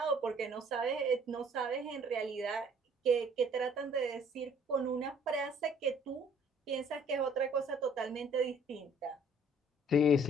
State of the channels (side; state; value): both; normal; correlation 0.58